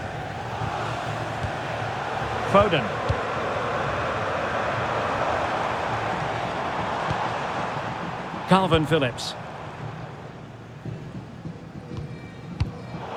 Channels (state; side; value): identical; both; correlation 1.00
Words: Foden. Calvin Phillips.